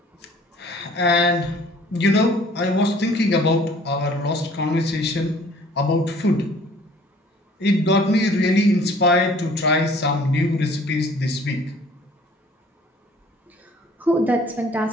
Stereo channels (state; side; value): normal; both; correlation 0.53